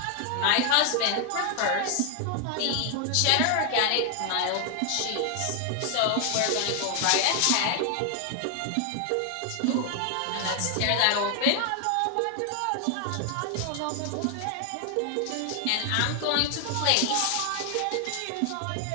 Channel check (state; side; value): different; both; correlation 0.00